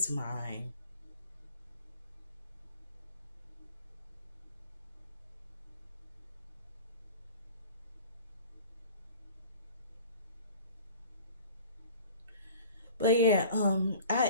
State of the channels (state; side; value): inverted; both; correlation -0.45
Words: mine. But yeah,